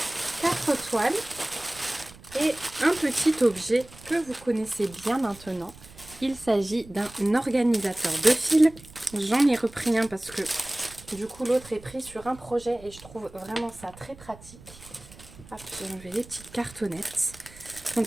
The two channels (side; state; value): right; noise; rumble, 20 dB below the sound